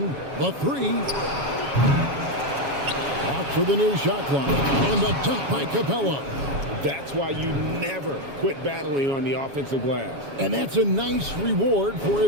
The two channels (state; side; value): late; left; 7.2 ms